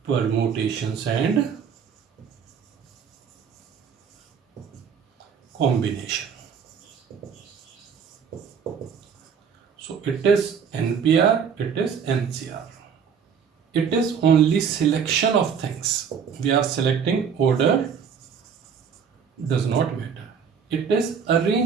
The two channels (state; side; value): quieter; left; 6.9 dB